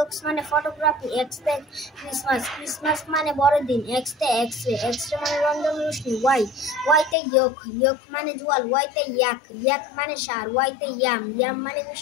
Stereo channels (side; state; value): right; drops out; at 7.2 s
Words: মানে ফটোগ্রাফি। এক্সতে ক্রিসমাস। ক্রিসমাস মানে বড়দিন। এক্সতে এক্সরে। এক্সরে মানে রঞ্জন রশ্মি। ওয়াইতে ইয়ক। ইয়ক মানে জোয়াল। ওয়াইতে ইয়াক। ইয়াক মানে সার। ওয়াইতে ইয়াম। ইয়াম মানে